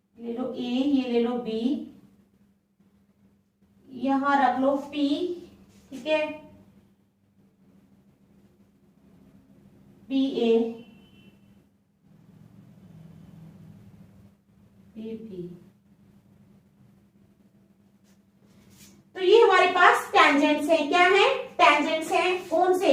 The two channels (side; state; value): both; identical; correlation 1.00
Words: ले लो ए, ये ले लो बी, यहां रख लो पी। ठीक है, बी ए बी बी। तो ये हमारे पास टेंजेंट्स हैं। क्या है? टेंजेंट्स हैं। कौन से?